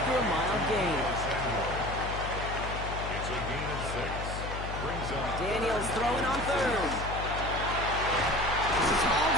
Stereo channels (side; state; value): left; noise; hum, 6 dB below the sound